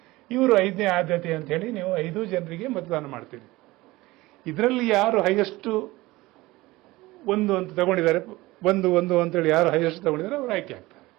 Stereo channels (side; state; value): left; quieter; 19.7 dB